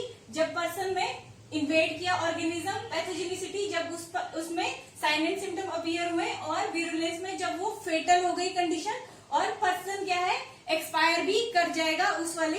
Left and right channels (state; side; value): identical; both; correlation 1.00